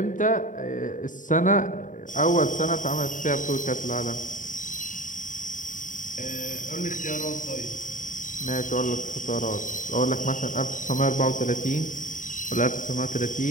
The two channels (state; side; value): late; right; 0.38 ms